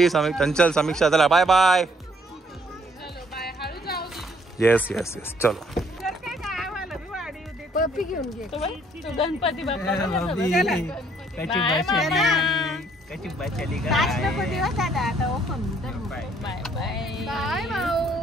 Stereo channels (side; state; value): both; normal; correlation 0.65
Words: चंचल समीक्षा चला bye bye. Yes yes yes. चलो पप्पी घेऊन घे. Ganpati Bappa bye bye.